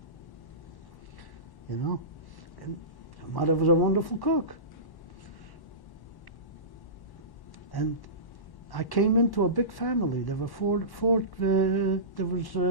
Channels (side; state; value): right; late; 1.1 ms